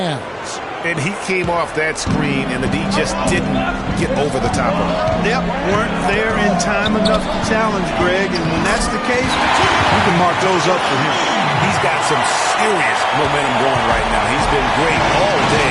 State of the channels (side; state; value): both; identical; correlation 1.00